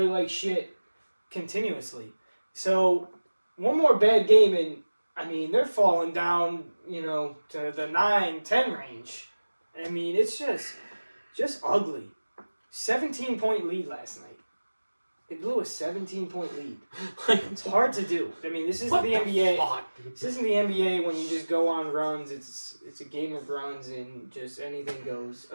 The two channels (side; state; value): both; inverted; correlation -1.00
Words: like shit continuously. So, one more bad game, and, they're falling down, to the 9-10 range. It's just ugly. 17-point lead last night. It blew a 17-point lead. It's hard to do. This isn't the NBA. This isn't the NBA when you just go on runs. It's a game of runs and just anything goes. A